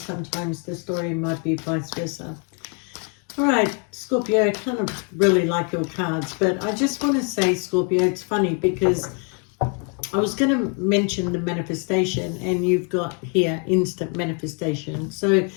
the story might be vice versa. Alright, Scorpio, I kind of really like your cards, but I just want to say, Scorpio, it's funny because I was going to mention the manifestation, and you've got here instant manifestation. So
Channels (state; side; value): quieter; right; 38.3 dB